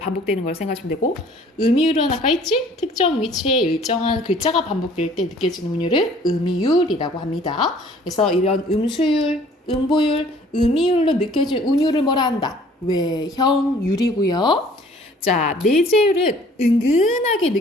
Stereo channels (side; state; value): both; normal; correlation 0.55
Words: 걸 생각하시면 되고 음이율은 아까 있지? 특정 위치에 일정한 글자가 반복될 때 느껴지는 운율을 음이율이라고 합니다. 그래서 이런 음수율, 음보율, 음이율로 느껴진 운율을 뭐라 한다? 외형율이고요. 자, 내재율은 은근하게